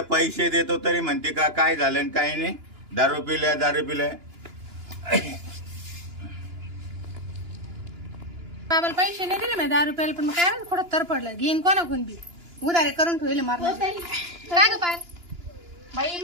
पैसे देतो तरी म्हणते का काय झालं आणि काय नाही. दारू पिल्या दारू पिल्या. बाबाला पैसे नाही दिले मी 10 रुपयाला, पण मग काय माहिती कुठं तर पडलं. घेईन कोणाकडून बी उधारे करून ठेवले मारलं. हो ताई. काय ग पाय बाई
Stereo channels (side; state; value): left; late; 2.9 ms